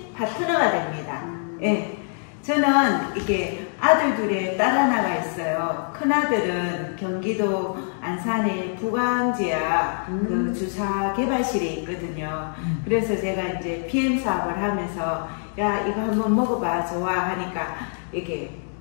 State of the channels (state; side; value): silent; right; 58 dB below the other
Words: 파트너가 됩니다. 예. 저는 이게 아들 둘에 딸 하나가 있어요. 큰아들은 경기도 안산의 부광지야 그 주사 개발실에 있거든요. 그래서 제가 이제 PM 사업을 하면서 야 이거 한번 먹어봐 좋아 하니까 이게